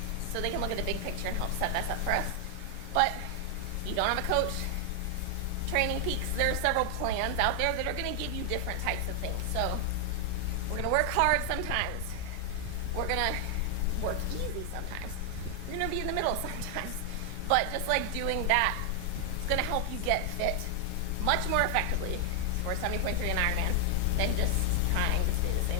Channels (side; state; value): both; different; correlation 0.00